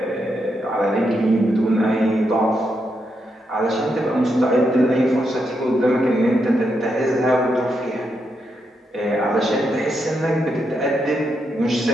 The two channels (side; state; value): both; normal; correlation 0.82